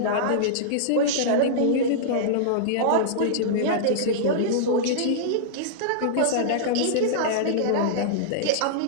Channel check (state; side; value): different; both; correlation -0.03